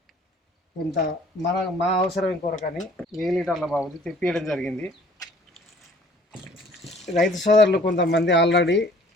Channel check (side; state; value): both; normal; correlation 0.54